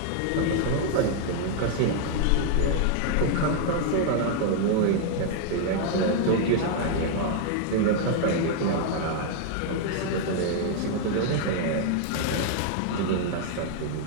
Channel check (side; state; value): both; different; correlation 0.00